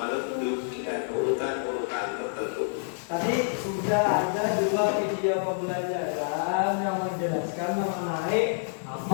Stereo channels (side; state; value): right; silent; digital silence